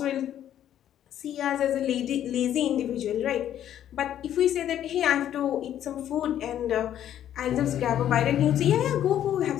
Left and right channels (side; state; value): right; quieter; 10.9 dB